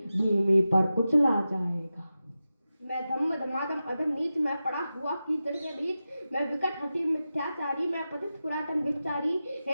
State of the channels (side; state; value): both; inverted; correlation -0.93